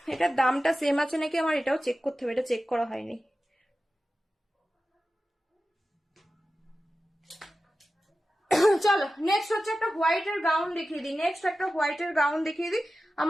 এটার দামটা সেম আছে নাকি আমার এটাও চেক করতে হবে, এটা চেক করা হয়নি। চলো নেক্সট হচ্ছে একটা হোয়াইটের গাউন দেখিয়ে দিই, নেক্সট একটা হোয়াইটের গাউন দেখিয়ে দিই।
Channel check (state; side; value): normal; both; correlation 0.94